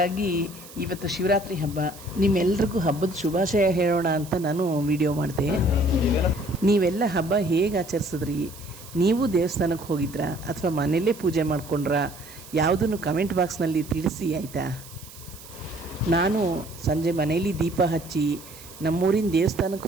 ಇವತ್ತು ಶಿವರಾತ್ರಿ ಹಬ್ಬ, ನಿಮ್ಮೆಲ್ರಿಗೂ ಹಬ್ಬದ ಶುಭಾಶಯ ಹೇಳೋಣ ಅಂತ ನಾನು ವಿಡಿಯೋ ಮಾಡಿದೆ. ನೀವೆಲ್ಲ ಹಬ್ಬ ಹೇಗೆ ಆಚರಿಸಿದ್ರಿ? ನೀವು ದೇವಸ್ಥಾನಕ್ಕೆ ಹೋಗಿದ್ರಾ ಅಥವಾ ಮನೆಯಲ್ಲೇ ಪೂಜೆ ಮಾಡ್ಕೊಂಡ್ರಾ? ಯಾವುದನ್ನು ಕಮೆಂಟ್ ಬಾಕ್ಸ್ನಲ್ಲಿ ತಿಳಿಸಿ, ಆಯಿತಾ? ನಾನು ಸಂಜೆ ಮನೆಯಲ್ಲಿ ದೀಪ ಹಚ್ಚಿ ನಮ್ಮೂರಿನ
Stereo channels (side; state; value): right; noise; hiss, 18 dB below the sound